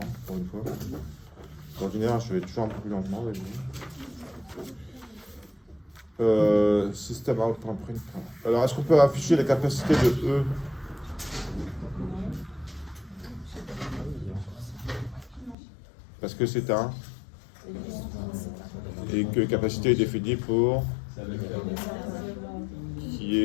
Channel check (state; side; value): drops out; right; at 15.6 s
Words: pour une fois. En général, je vais toujours un peu plus lentement. Système outprint. Alors, est-ce qu'on peut afficher la capacité de E? Parce que c'est un. Et que capacité est définie pour qui